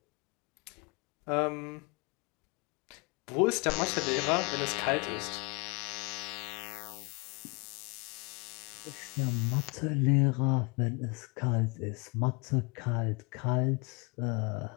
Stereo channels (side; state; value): right; quieter; 30.7 dB